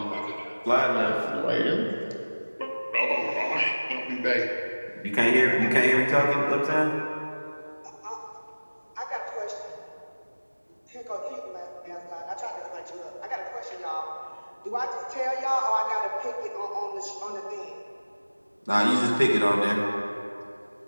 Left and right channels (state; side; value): inverted; both; correlation -1.00